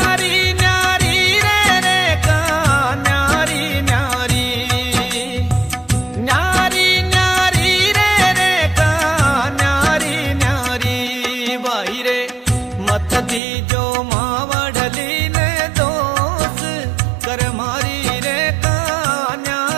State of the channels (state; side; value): drops out; left; at 13.4 s